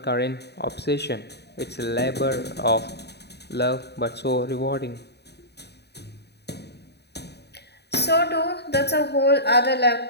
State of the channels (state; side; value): late; right; 0.48 ms